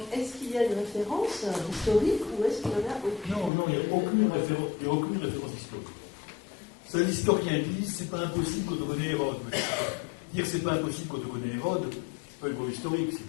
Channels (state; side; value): drops out; right; at 3.5 s